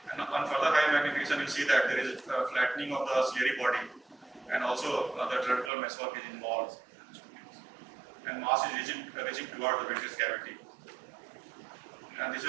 And on further high magnification, you see that there is a flattening of the ciliary body, and also the trabecular mesoarc is involved. And mass is reaching toward the vitreous cavity. And this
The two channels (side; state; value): left; drops out; at 5.7 s